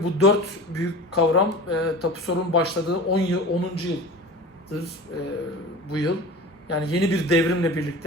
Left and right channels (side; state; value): both; normal; correlation 0.35